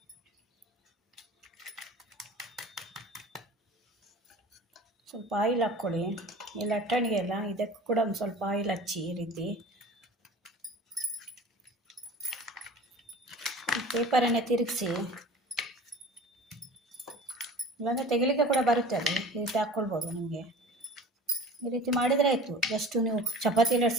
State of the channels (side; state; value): both; normal; correlation 0.41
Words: ಸ್ವಲ್ಪ ಆಯಿಲ್ ಹಾಕ್ಕೊಳ್ಳಿ. ಈ ಲಟ್ಟಣಿಗೆ ಎಲ್ಲ ಇದಕ್ಕೂ ಕೂಡ ಒಂದು ಸ್ವಲ್ಪ ಆಯಿಲ್ ಹಚ್ಚಿ ಈ ರೀತಿ. ಪೇಪರನ್ನೇ ತಿರುಗಿಸಿ, ಇಲ್ಲಾಂದರೆ ತೆಗಿಲಿಕ್ಕೆ ಕೂಡ ಬರುತ್ತೆ, ಅದು ಈ ರೀತಿ ಹಾಕ್ಕೊಳ್ಬೋದು. ನಿಮಗೆ ಈ ರೀತಿ ಮಾಡಿದರೆ ಆಯಿತು. ಜಸ್ಟ್ ನೀವು ಚಪಾತಿ